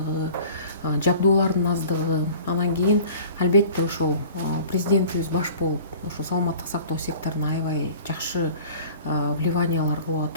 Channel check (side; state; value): both; inverted; correlation -0.45